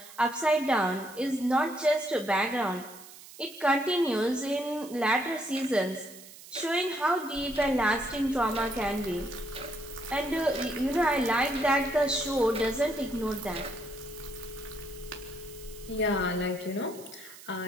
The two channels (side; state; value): right; noise; hiss, 18 dB below the sound